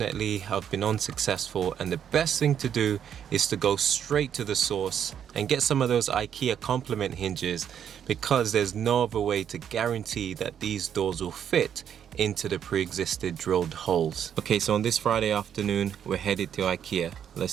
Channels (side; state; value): left; quieter; 8.9 dB